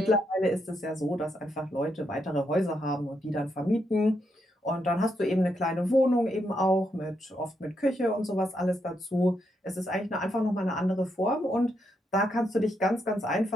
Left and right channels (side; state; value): both; normal; correlation 0.80